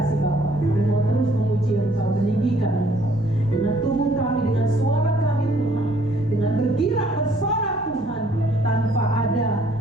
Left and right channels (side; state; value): both; normal; correlation 0.62